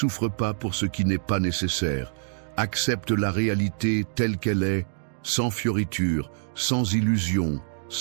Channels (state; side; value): silent; left; digital silence